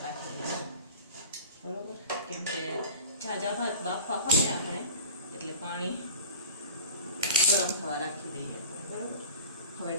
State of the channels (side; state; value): both; inverted; correlation -0.38